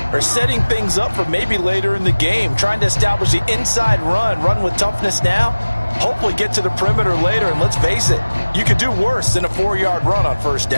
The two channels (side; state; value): both; inverted; correlation -1.00